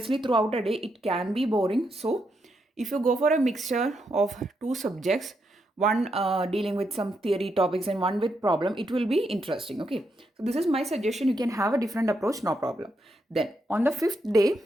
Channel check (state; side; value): normal; both; correlation 0.81